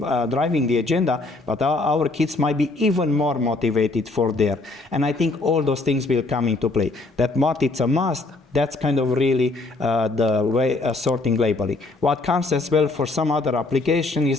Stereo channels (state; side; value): quieter; right; 3.2 dB